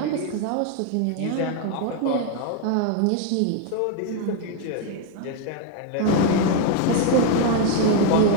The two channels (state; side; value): different; both; correlation 0.01